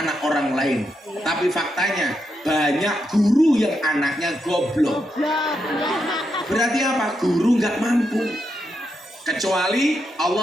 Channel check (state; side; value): normal; both; correlation 0.83